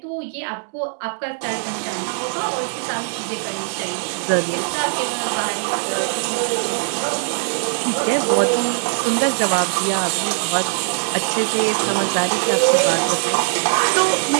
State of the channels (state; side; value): silent; left; 65 dB below the other